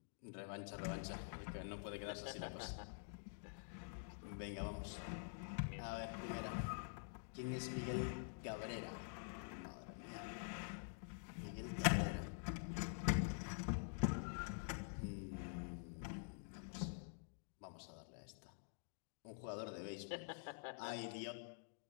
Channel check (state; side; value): silent; right; digital silence